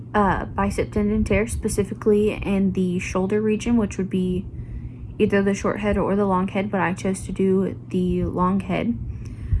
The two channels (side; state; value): both; identical; correlation 1.00